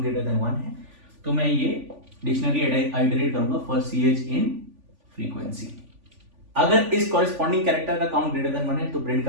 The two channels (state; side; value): late; left; 3.5 ms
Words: ग्रेटर देन 1 है। तो मैं ये डिक्शनरी आइटरेट करूंगा फॉर ch इन फ्रीक्वेंसी। अगर इस कॉरेस्पॉन्डिंग कैरेक्टर का काउंट ग्रेटर देन 1 है तो प्रिंट